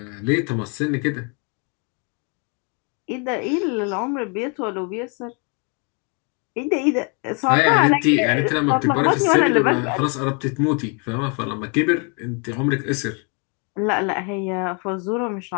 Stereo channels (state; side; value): quieter; right; 35.8 dB